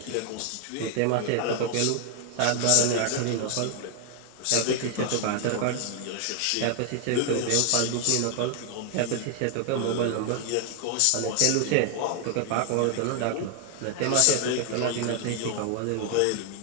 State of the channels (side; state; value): both; different; correlation 0.00